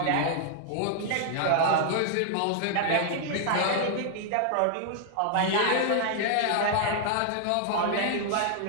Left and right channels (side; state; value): both; different; correlation 0.00